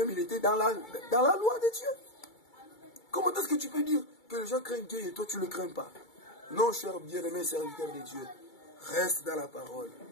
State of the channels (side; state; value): right; late; 2.3 ms